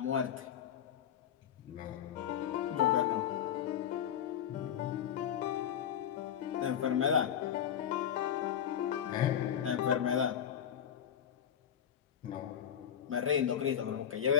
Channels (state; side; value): quieter; right; 9.2 dB